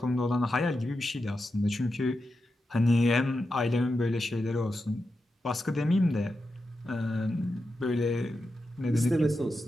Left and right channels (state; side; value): normal; both; correlation 0.89